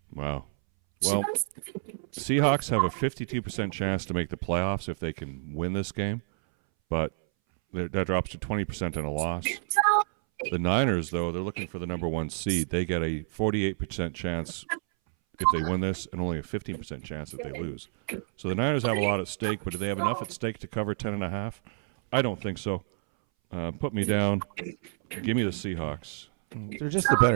Wow. Well, Seahawks have a 52% chance to make the playoffs if they can win this game, but that drops to 20% in a loss. The Niners, though, they're looking for the number 1 seed. They get a 48% chance if they win this, and only a 15% chance if they lose. So the Niners have a lot at stake, but do they have enough at stake to cover 10.5? I don't think so. Put me down. Give me the Seahawks. They're just a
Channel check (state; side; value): silent; left; 59 dB below the other